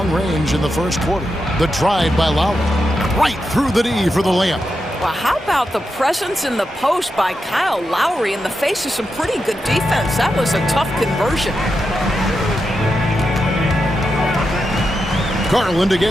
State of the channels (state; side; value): normal; both; correlation 0.87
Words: range in the first quarter. The drive by Lowry. Right through the D for the layup. Well, how about the presence in the post by Kyle Lowry in the face of some pretty good defense? That was a tough conversion. Garland